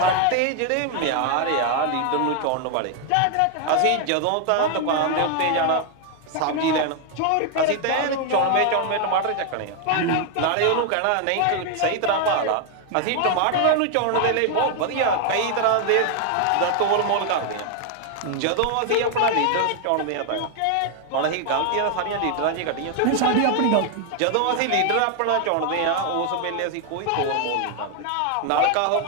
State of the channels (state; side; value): different; both; correlation 0.00